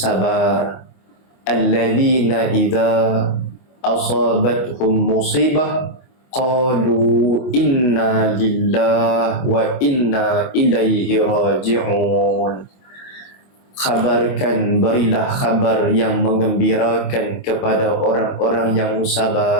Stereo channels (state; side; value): late; right; 24 ms